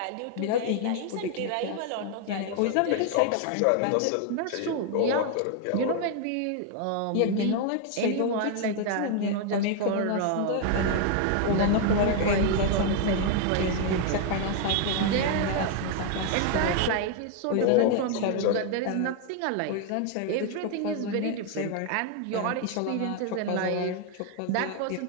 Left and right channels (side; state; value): both; different; correlation 0.00